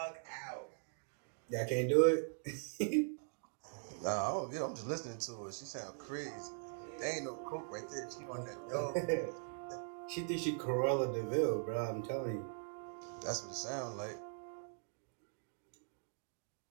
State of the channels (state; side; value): silent; left; digital silence